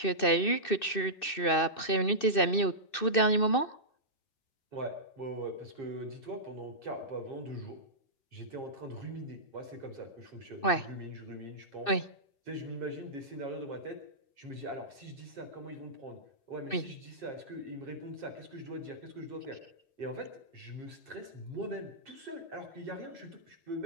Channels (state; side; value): late; right; 2.6 ms